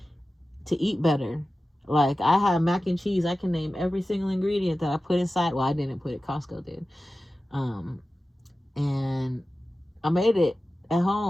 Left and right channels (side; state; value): both; normal; correlation 0.95